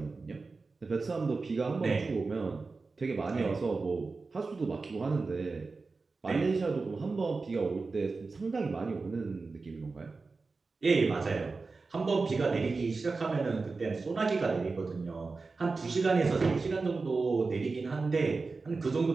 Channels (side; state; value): left; quieter; 4.1 dB